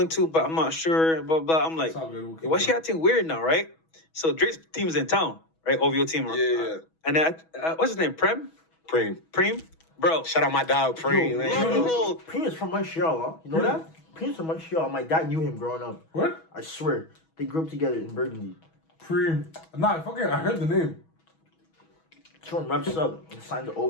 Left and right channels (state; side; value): late; right; 6.2 ms